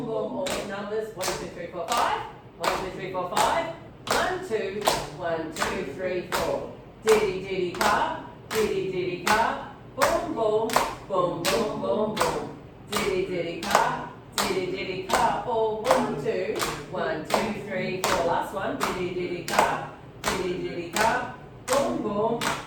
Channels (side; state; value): both; identical; correlation 1.00